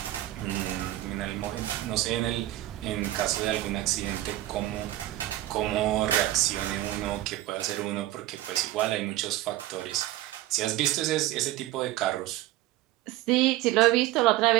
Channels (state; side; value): quieter; left; 15.5 dB